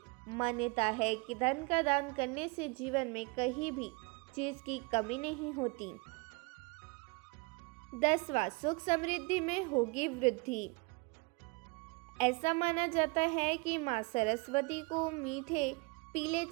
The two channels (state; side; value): quieter; left; 28.4 dB